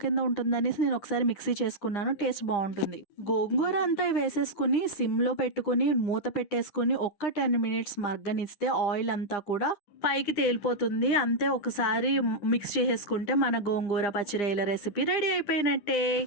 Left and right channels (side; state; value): right; late; 9.9 ms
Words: కింద ఉంటుందనేసి నేను ఒకసారి మిక్సీ చేసుకున్నాను. టేస్ట్ బాగుంటుంది. గోంగూర అంతా వేసేసుకుని సిమ్లో పెట్టుకుని మూత పెట్టేసుకుని ఒక్క 10 మినిట్స్ మగ్గనిస్తే ఆయిల్ అంతా కూడా పైకి తేలిపోతుంది. అంతే, ఒకసారి మిక్స్ చేసేసుకుంటే మన గోంగూర పచ్చిరొయ్యల రెసిపీ రెడీ అయిపోయినట్టే.